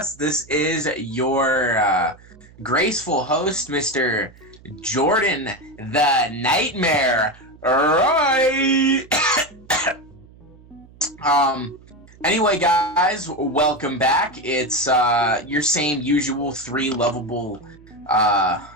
This is your graceful host, Mr. Jordan the Nightmare. Right. Anyway, guys, welcome back. It's your same usual three lovable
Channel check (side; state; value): right; noise; hum, 24 dB below the sound